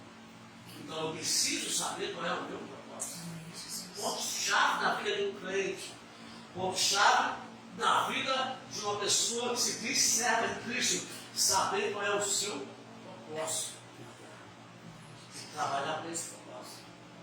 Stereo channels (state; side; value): identical; both; correlation 1.00